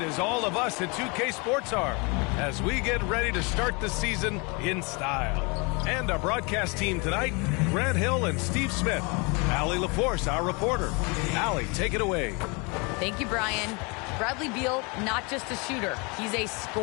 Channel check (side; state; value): right; quieter; 30.0 dB